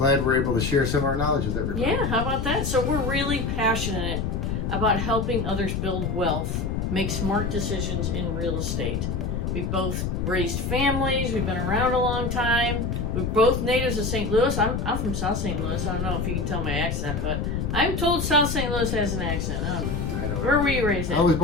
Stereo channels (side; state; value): left; noise; rumble, 1 dB below the sound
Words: we're able to share some of our knowledge with everybody. Yeah, how about that? So we're really passionate about helping others build wealth, make smart decisions in real estate. We've both raised families. We've been around a long time. We're both natives of St. Louis. I'm from South St. Louis. I don't know if you can tell my accent, but I'm told South St. Louis has an accent. I don't know. Where were you raised at? I was